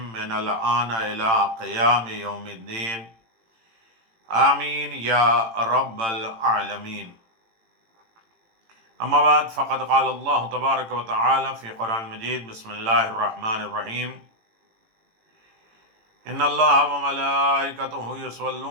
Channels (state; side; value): late; left; 18 ms